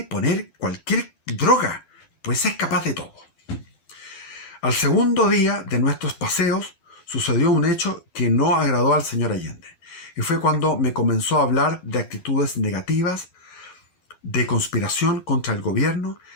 poner cualquier droga, pues es capaz de todo. Al segundo día de nuestros paseos sucedió un hecho que no agradó al señor Allende, y fue cuando me comenzó a hablar de actitudes negativas, de conspiración contra el gobierno,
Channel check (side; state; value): right; late; 12 ms